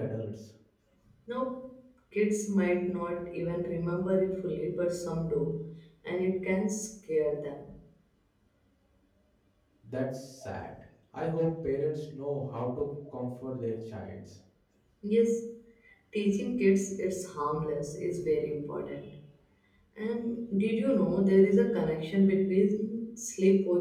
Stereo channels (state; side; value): identical; both; correlation 1.00